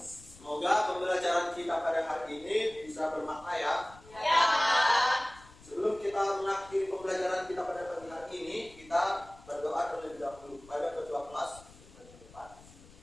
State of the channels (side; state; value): left; noise; rumble, 22 dB below the sound